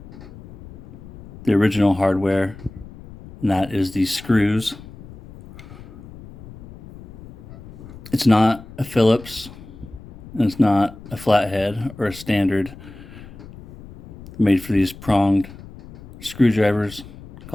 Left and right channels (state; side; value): noise; left; rumble, 18 dB below the sound